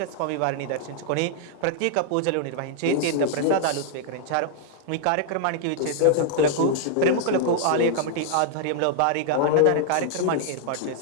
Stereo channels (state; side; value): different; both; correlation -0.01